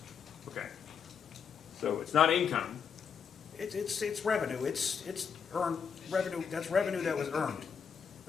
Okay. So it's not income. It's revenue. It's earned revenue. That's revenue that was earned.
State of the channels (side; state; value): right; quieter; 6.8 dB